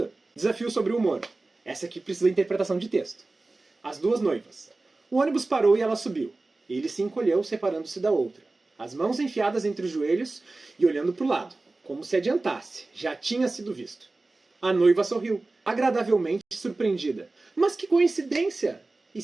Desafio sobre o humor. Essa aqui precisa de interpretação de texto. As duas noivas. O ônibus parou e ela subiu. Ele se encolheu, separando-se da outra. As mãos enfiadas entre os joelhos e olhando para o lado, como se adiantasse. Já tinha sido visto. A noiva sorriu, agradavelmente surpreendida. Mas que coincidência! E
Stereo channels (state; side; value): quieter; left; 3.3 dB